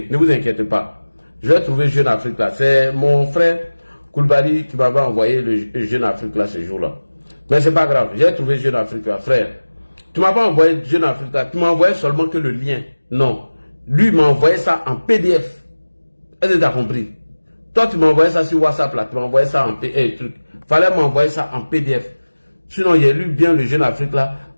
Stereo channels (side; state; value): both; inverted; correlation -1.00